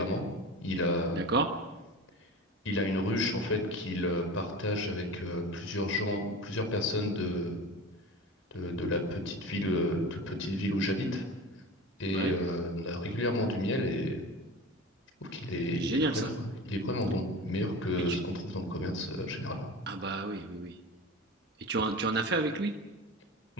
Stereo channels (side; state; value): both; normal; correlation 0.32